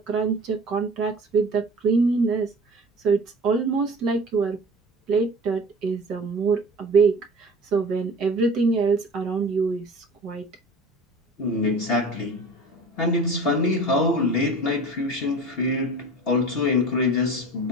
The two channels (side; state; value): both; normal; correlation 0.39